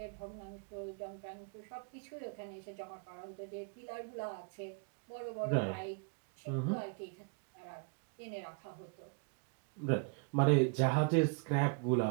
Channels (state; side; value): quieter; left; 36.5 dB